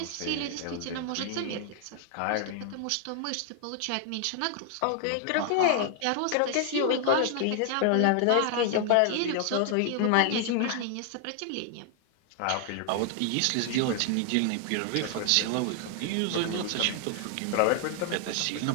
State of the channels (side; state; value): both; different; correlation 0.00